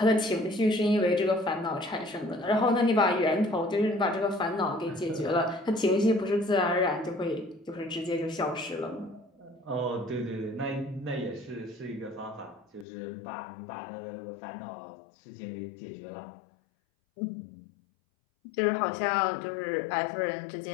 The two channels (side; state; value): right; drops out; at 12.9 s